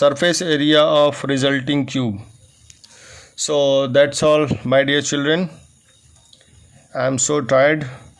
area of resulting cube। So that's all, my dear children. I am so tired.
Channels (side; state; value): both; identical; correlation 1.00